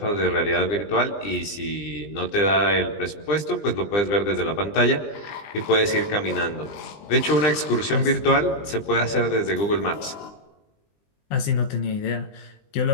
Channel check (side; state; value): right; late; 20 ms